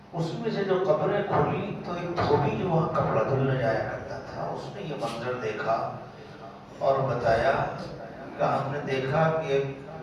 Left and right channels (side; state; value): both; identical; correlation 1.00